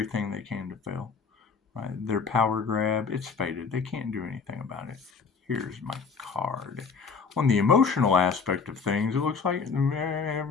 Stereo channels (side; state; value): right; quieter; 5.3 dB